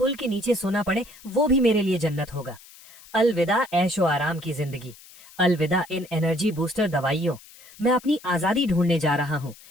के नीचे सोना पड़े, वो भी मेरे लिए जन्नत होगा। अलविदा ऐशो आराम की जिंदगी, अलविदा इन एनर्जी बूस्टर दवाइयों। मैं अपनी आजादी ढूंढने जा रहा हूँ,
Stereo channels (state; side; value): noise; left; hiss, 22 dB below the sound